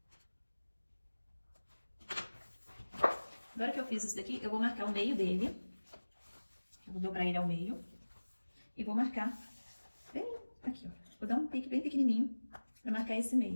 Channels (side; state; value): both; inverted; correlation -1.00